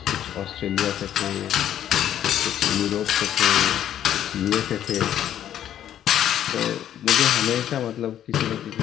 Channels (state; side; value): quieter; right; 10.8 dB